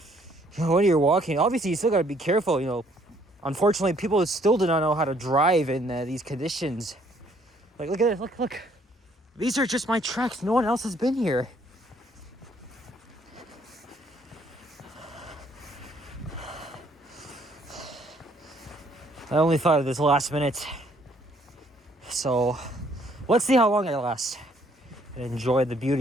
when you're walking, obviously you still gotta be careful, Unfortunately, people still do not know how to drive in these conditions. Like, look at this, look. These are just my tracks. No one else has been here. I only thought of this last minute. So, let's see how long it lasts. Enjoy the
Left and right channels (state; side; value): normal; both; correlation 0.65